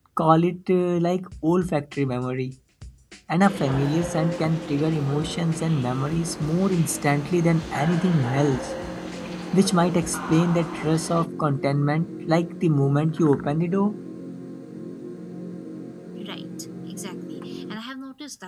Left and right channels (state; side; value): identical; both; correlation 1.00